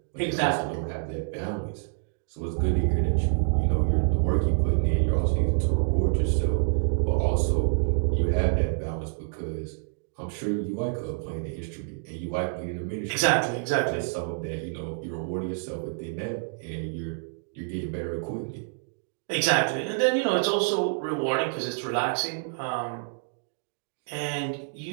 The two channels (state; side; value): silent; left; digital silence